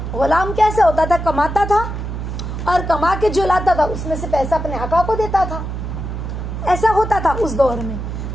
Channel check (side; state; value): right; noise; hum, 5 dB below the sound